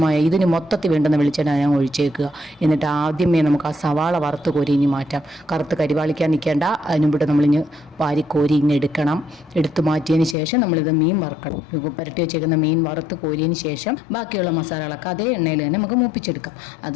ഇതിന് മൊത്തത്തിൽ വേണ്ടുന്ന വെളിച്ചെണ്ണ ഞാൻ ഒഴിച്ചേക്കുക. എന്നിട്ട് ആദ്യമേ നമുക്ക് ആ സവാള വറുത്ത് കോരി ഇനി മാറ്റാം. കറുത്ത് കരിവാളിക്കാൻ നിൽക്കേണ്ട. അതിനുമ്പിട്ട് നമ്മളിഞ്ഞ് വാരിക്കോരി ഇങ്ങനെ എടുക്കണം. എടുത്തു മാറ്റിയതിന് ശേഷം നമ്മളിത് മീൻ വറുക്കണം. പുരട്ടി വെച്ചേക്കുന്ന മീൻ വറുത്ത് കോരിയതിന് ശേഷം ബാക്കിയുള്ള മസാലകളൊക്കെ അതേ എണ്ണയിൽ തന്നെ നമുക്ക് മൂപ്പിച്ചെടുക്കാം.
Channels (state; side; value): drops out; right; at 10.4 s